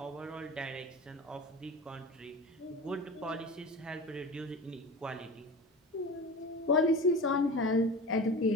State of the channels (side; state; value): both; normal; correlation 0.32